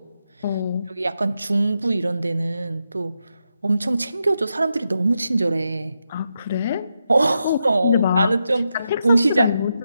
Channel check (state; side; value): inverted; both; correlation -0.85